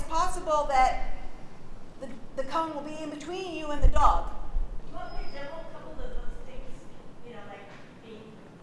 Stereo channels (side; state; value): both; identical; correlation 1.00